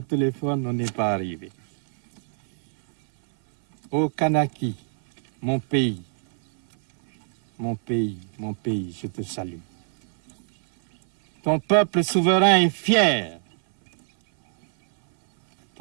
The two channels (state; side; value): silent; left; 58 dB below the other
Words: on n'est pas arrivé. Ô Kanaki, mon pays, mon pays, mon pays, je te salue. Ton peuple souverain est fier.